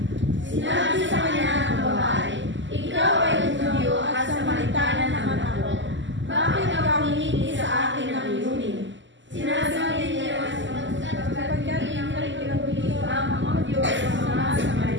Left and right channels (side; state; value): left; late; 0.54 ms